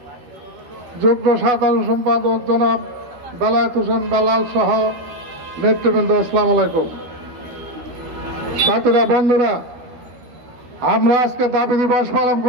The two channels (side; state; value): left; late; 13 ms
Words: যুগ্ম সাধারণ সম্পাদক জনাব বেলায়েত হোসেন বেলাল সহ নেতৃবৃন্দ, আসসালামু আলাইকুম। সাথীরা, বন্ধুরা, আমরা আজকে দাবি দিবস পালন